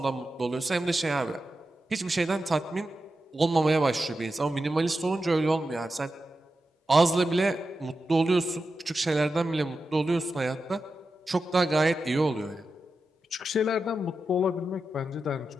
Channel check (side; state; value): both; normal; correlation 0.90